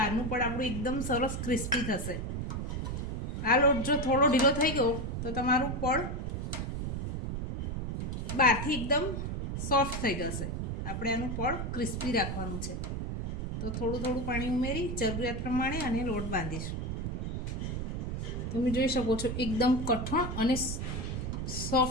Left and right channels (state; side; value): noise; right; rumble, 3 dB below the sound